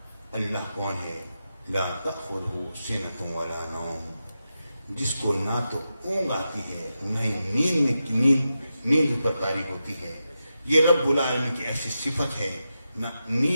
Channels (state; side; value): inverted; both; correlation -0.89